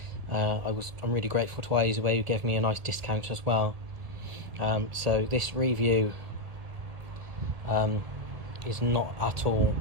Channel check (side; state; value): left; late; 1.5 ms